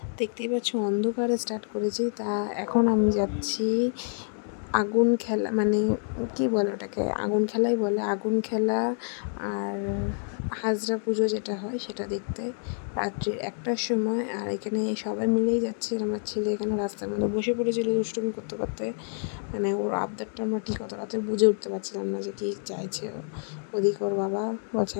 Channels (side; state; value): right; silent; 60 dB below the other